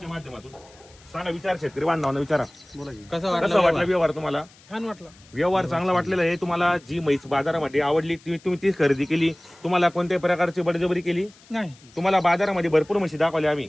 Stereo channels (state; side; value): noise; left; hiss, 26 dB below the sound